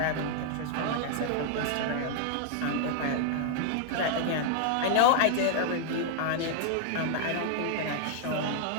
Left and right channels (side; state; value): both; different; correlation 0.00